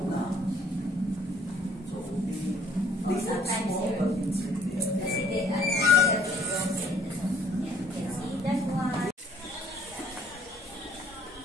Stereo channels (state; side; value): normal; both; correlation 0.61